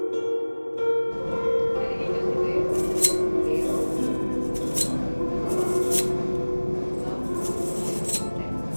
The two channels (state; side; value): inverted; both; correlation -1.00